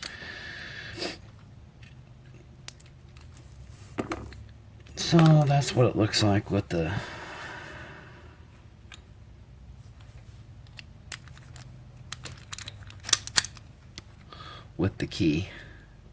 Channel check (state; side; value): identical; both; correlation 1.00